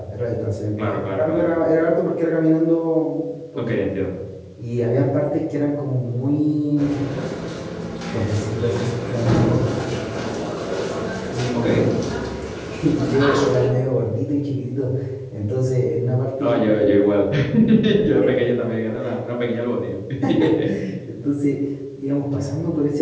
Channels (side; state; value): both; identical; correlation 1.00